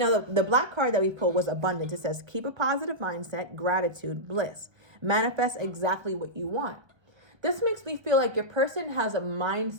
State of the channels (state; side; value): late; left; 1.3 ms